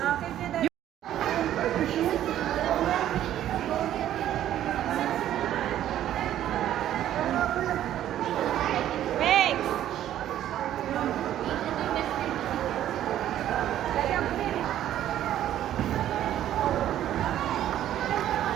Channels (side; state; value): left; quieter; 11.9 dB